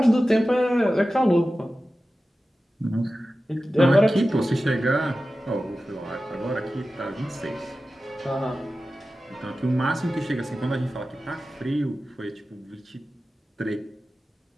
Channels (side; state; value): both; normal; correlation 0.94